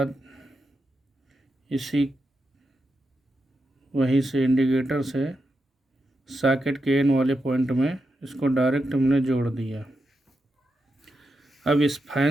वहीं से इंडिकेटर से सॉकेट के एन वाले पॉइंट में इसको डायरेक्ट हमने जोड़ दिया। अब इस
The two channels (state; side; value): normal; both; correlation 0.87